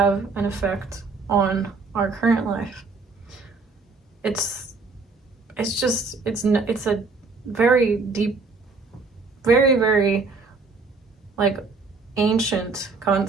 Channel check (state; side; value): quieter; left; 4.1 dB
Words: an effect on our current life. It's a very deep, very, very like ancient